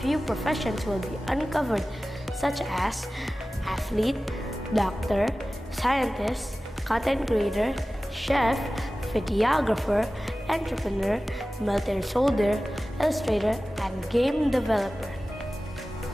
professions will be uncovered, such as athlete, doctor, scientist, content creator, chef, videographer, entrepreneur, military soldier, illustrator, and game developer.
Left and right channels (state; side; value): normal; both; correlation 0.96